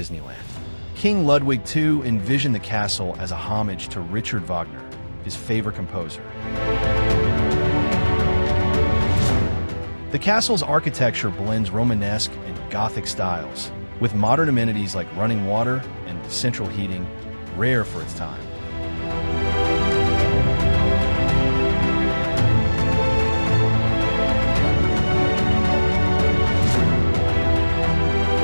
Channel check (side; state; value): both; inverted; correlation -1.00